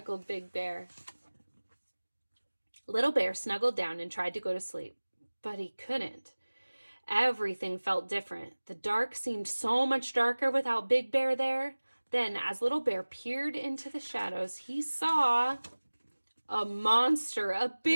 Big Bear. Little Bear snuggled down and tried to go to sleep, but he couldn't. Everything felt different. The dark seemed so much darker without Big Bear there. Then, as Little Bear peered into the shadows, he saw a monster, a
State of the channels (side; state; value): both; inverted; correlation -1.00